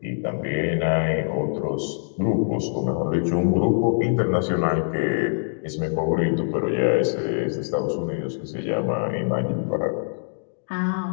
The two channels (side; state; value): right; silent; digital silence